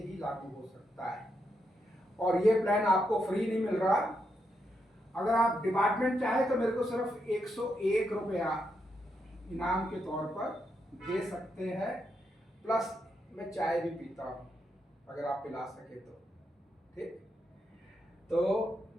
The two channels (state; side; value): normal; both; correlation 0.82